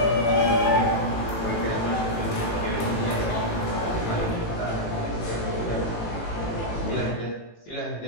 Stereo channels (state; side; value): late; right; 18 ms